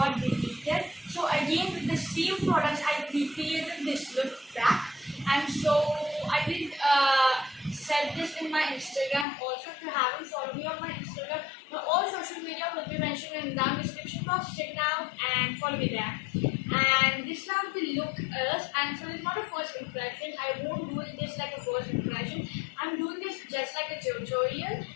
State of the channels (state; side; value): drops out; right; at 9.2 s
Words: deleted. So again with the same products I recreated this look back, and so I did set this in my Instagram. Also, if you haven't followed me on my Instagram, all social media will be mentioned in the description box. Check it out and follow me there. And this is how the look is, and so it's not a first impression. I won't do this like a first impression. I'm doing this just like a tutorial.